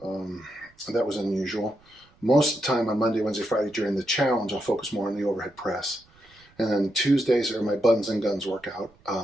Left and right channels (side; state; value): right; noise; rumble, 30 dB below the sound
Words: That was unusual. Most of the time on Monday, Wednesday, Friday during the challenge, I'll focus more on the overhead press. And then Tuesdays are my buns and guns workout,